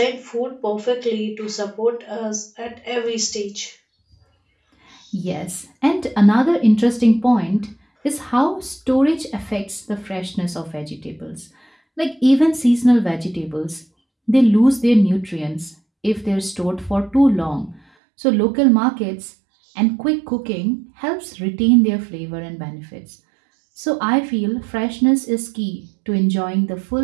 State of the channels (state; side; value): drops out; left; at 17.8 s